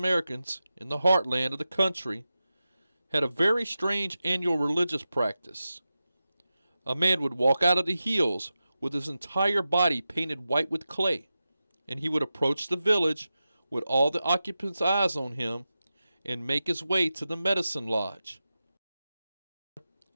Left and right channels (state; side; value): inverted; both; correlation -0.92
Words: in the heartland of the country had a very strange annual religious practice. A man would walk out of the hills with his entire body painted white with clay, and he would approach the village with all the occupants' eyes on him and make his way to the medicine lodge.